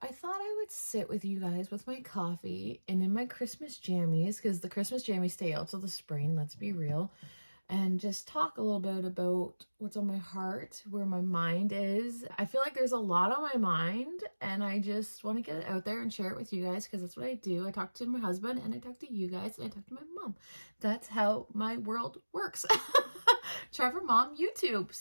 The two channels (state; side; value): inverted; both; correlation -1.00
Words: I thought I would sit with you guys with my coffee and in my Christmas jammies, because the Christmas jammies stay out till the spring, let's be real, and just talk a little bit about what's on my heart, where my mind is. I feel like there's a lot on my mind and I just want to get it out there and share it with you guys, because that's what I do. I talk to my husband and I talk to you guys and I talk to my mom. That's how my world works. Trevor Mom YouTube.